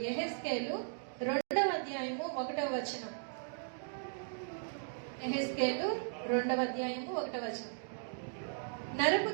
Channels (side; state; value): left; silent; digital silence